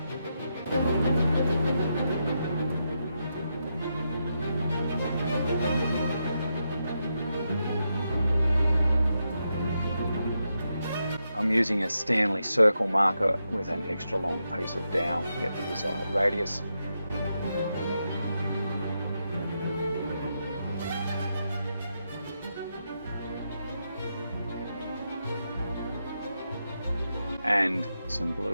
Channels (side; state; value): both; inverted; correlation -0.85